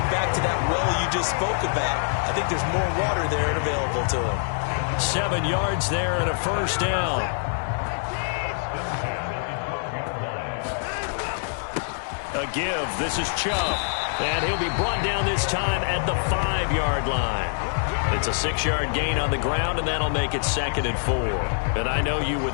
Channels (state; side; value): silent; right; digital silence